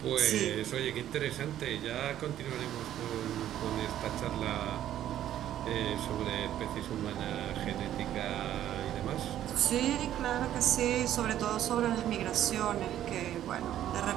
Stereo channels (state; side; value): quieter; left; 11.8 dB